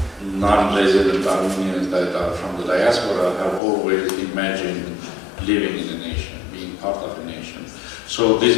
non-resident Armenians that are from the diaspora have always imagined living in a nation, being part of a nation. So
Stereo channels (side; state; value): right; drops out; at 3.6 s